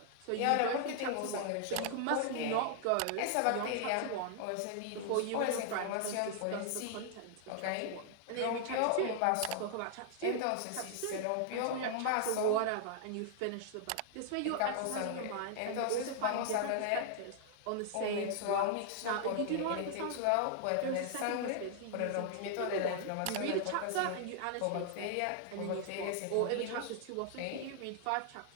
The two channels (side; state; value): both; different; correlation 0.00